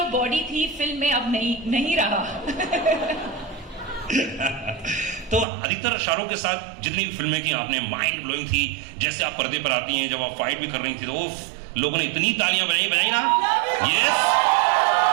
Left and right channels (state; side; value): drops out; left; at 5.5 s